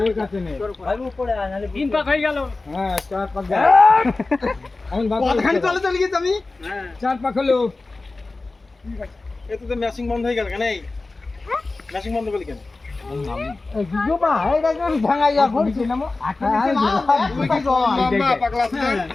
আছে নে তিন পাক হয়ে গেল হ্যাঁ চার পাক গেল আমি পথখান চলে গেছে আমি চার পাক হলো এতে তো ম্যাচিং বন্ধ হয়ে গেল কেন এই ম্যাচিং বন্ধ করলি কেন জুবা এই গাছ আমি ভাঙাই যাব নামো তুই কি লম্বা পাগলা আছে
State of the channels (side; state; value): right; quieter; 3.4 dB